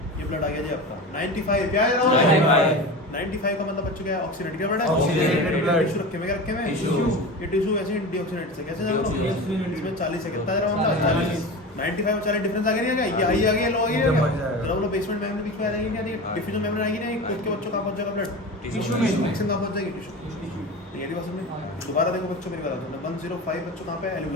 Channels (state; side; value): normal; both; correlation 0.29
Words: ये ब्लड आ गया जी आपका 95 क्या है जरा 95 का मतलब बच्चों क्या है ऑक्सीडेट क्या ब्लड है Oxygenated blood। टिश्यू रखे में क्या रखे में टिश्यू। ये टिश्यू ऐसे डीऑक्सीडेट से कैसे जानो Deoxygenated। इसमें 40 है कितना जरा मतलब 40 95 और 40 डिफरेंस आ गया नहीं आ गया ये हाई आ गया लो आ गया बढ़ जाएगा। जरा बोलो बेसमेंट मेम्ब्रेन बीच में आ जाएगी क्या डिफ्यूजन मेम्ब्रेन आएगी नहीं खुद के बच्चों कहाँ पहुंच जाएगा ब्लड टिश्यू में। ऑक्सीजन कहाँ पहुंच जाएगी टिश्यू ये वाली बात समझे दोबारा देखो बच्चों मेरी बात सुनो 105 बच्चों कहाँ पे